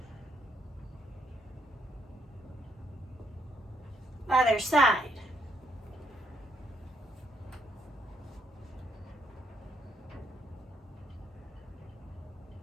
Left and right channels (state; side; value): normal; both; correlation 0.74